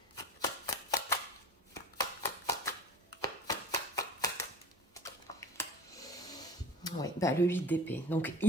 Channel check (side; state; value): both; normal; correlation 0.39